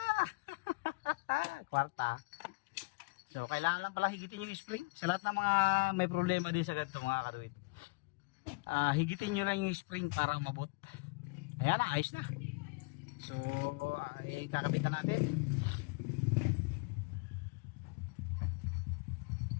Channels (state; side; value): quieter; right; 28.5 dB